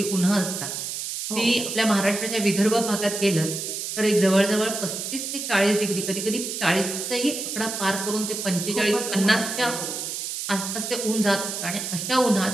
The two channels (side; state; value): right; noise; hiss, 5 dB below the sound